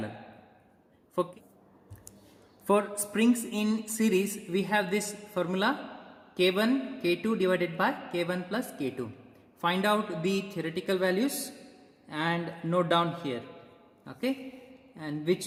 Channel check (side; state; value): both; identical; correlation 1.00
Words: For springs in series, we have this formula K1 K2 divided by K1 plus K2. Find out the theoretical values and note down here. Okay, and which